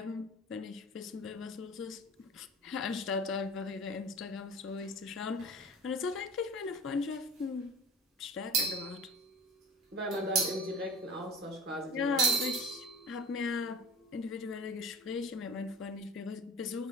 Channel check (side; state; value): both; normal; correlation 0.39